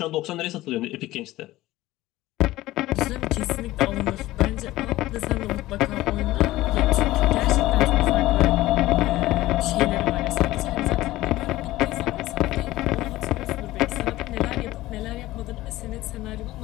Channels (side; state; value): right; quieter; 16.9 dB